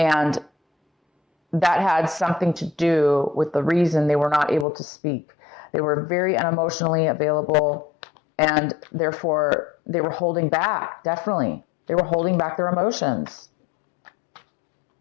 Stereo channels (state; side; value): drops out; right; at 4.7 s